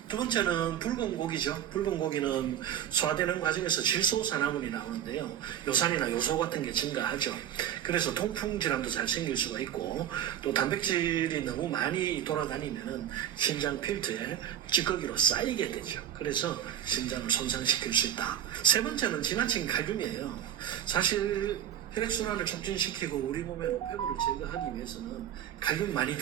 두 번째는 붉은 고기죠. 붉은 고기는 소화되는 과정에서 질소산화물이 나오는데요. 요산이나 요소 같은 게 증가하죠. 그래서 통풍 질환도 잘 생길 수가 있고 또 단백질이 너무 많이 돌아다니면 신장 필터에 찌꺼기로 쌓이게 되죠. 그래서 신장을 손상시킬 수 있다. 세 번째는 지나친 칼륨이에요. 사실 혈액순환을 촉진시키고 우리 몸의 노폐물을 제거하기 위해서는 칼륨 많이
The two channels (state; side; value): quieter; left; 10.3 dB